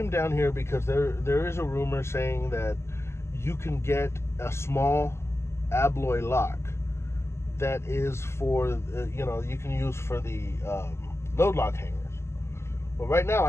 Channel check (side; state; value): right; late; 0.13 ms